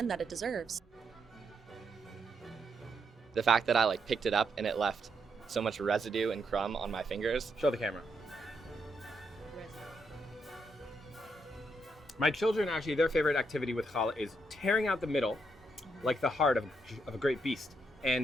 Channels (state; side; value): normal; both; correlation 0.78